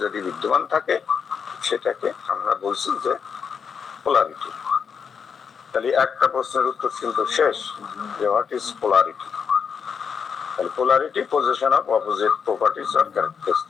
যদি বিদ্যমান থাকে সেটাকে আমরা বলছি যে পোলারিটি। তাহলে একটা প্রশ্নের উত্তর কিন্তু শেষ, যে হোয়াট ইজ পোলারিটি? তাহলে polarity position of opposite properties or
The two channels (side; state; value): right; quieter; 6.6 dB